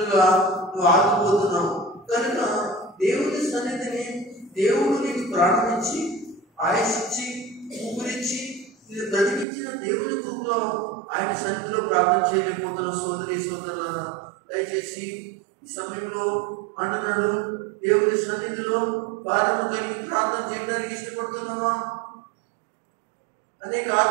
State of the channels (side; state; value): left; drops out; at 9.5 s